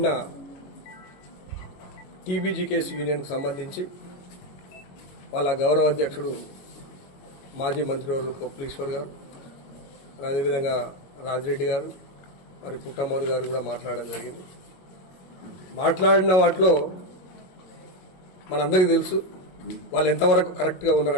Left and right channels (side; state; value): right; late; 22 ms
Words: టీబీజీకేఎస్ యూనియన్కు సంబంధించి వాళ్ళ గౌరవ అధ్యక్షుడు మాజీ మంత్రివర్గ పొప్పలీశ్వర్ గారు, అదేవిధంగా రాజిరెడ్డి గారు, మరి పుట్టమ్మద్ గారు కూడా మాట్లాడడం జరిగింది. మాట్లాడిన వాటిలో మనందరికీ తెలుసు వాళ్ళు ఎంతవరకు కరెక్ట్గా